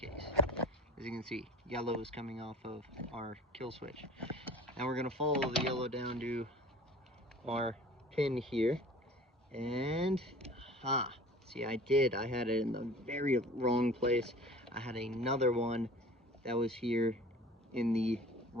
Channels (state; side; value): normal; both; correlation 0.44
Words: As you can see, yellow is coming off of our kill switch. Now we're gonna follow the yellow down to our pin here, and see, I had it in the very wrong place. I had another one that was here in the